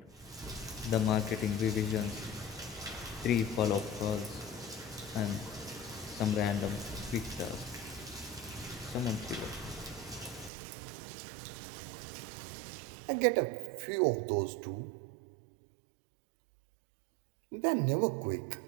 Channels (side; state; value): left; drops out; at 10.5 s